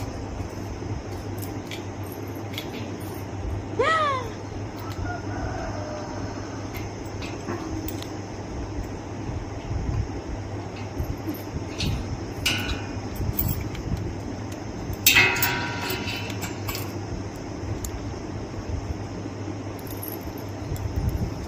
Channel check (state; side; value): identical; both; correlation 1.00